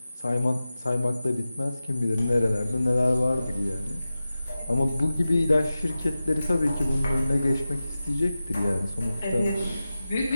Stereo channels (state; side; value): inverted; both; correlation -0.94